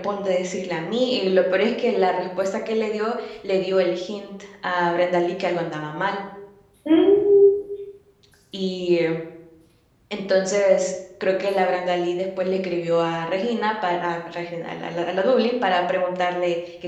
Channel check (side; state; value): both; identical; correlation 1.00